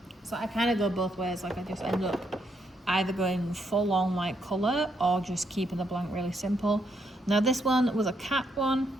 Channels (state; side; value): normal; both; correlation 0.76